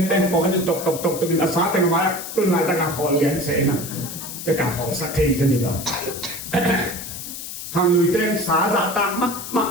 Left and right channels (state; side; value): noise; left; hiss, 9 dB below the sound